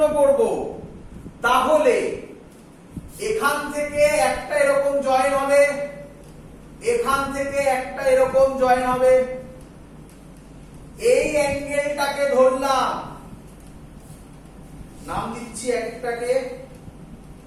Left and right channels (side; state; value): both; identical; correlation 1.00